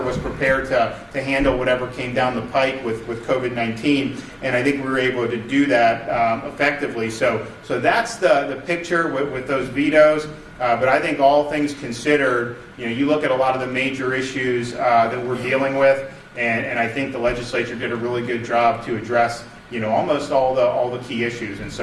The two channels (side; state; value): both; identical; correlation 1.00